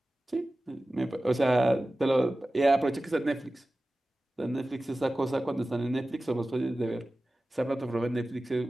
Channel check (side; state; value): both; normal; correlation 0.96